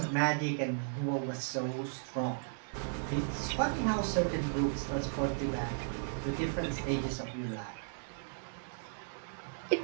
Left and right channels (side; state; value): left; silent; digital silence